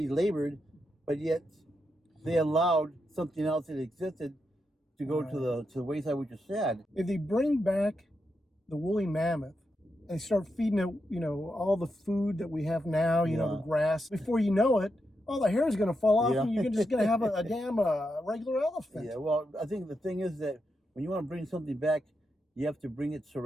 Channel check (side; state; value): both; normal; correlation 0.85